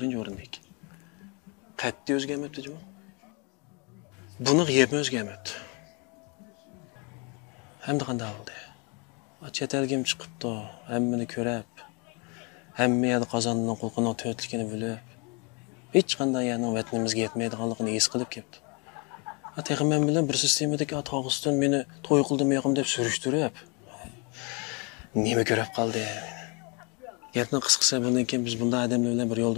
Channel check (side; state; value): right; quieter; 32.4 dB